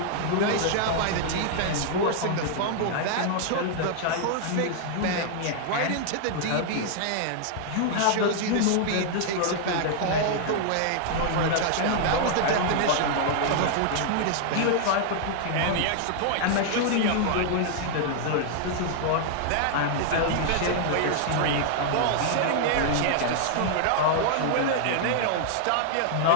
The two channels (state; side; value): different; both; correlation -0.01